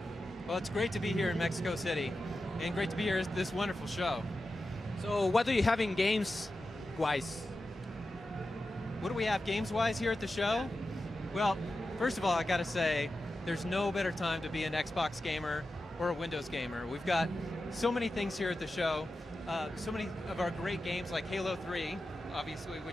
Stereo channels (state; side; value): normal; both; correlation 0.92